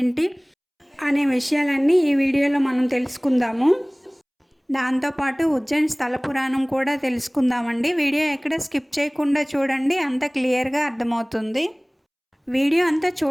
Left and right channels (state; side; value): identical; both; correlation 1.00